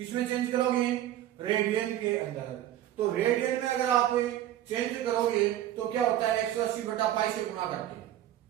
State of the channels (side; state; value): left; quieter; 12.6 dB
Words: चेंज करोगे, रेडियन के अंदर। तो रेडियन में अगर आप चेंज करोगे तो क्या होता है, 180/पाई से गुणा करते हैं।